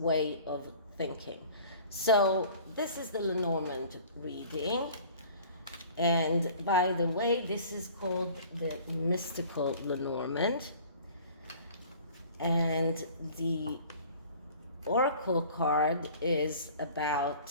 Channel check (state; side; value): inverted; both; correlation -0.47